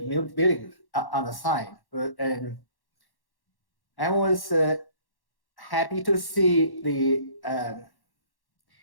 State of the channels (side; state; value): right; late; 1.1 ms